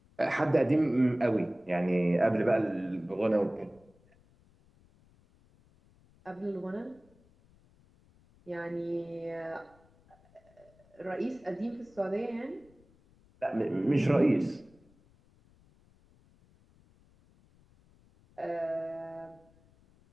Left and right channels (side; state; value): left; noise; rumble, 30 dB below the sound